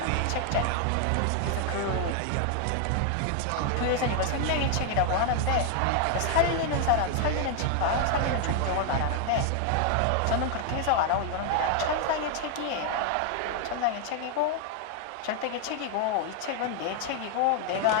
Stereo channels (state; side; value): different; both; correlation 0.00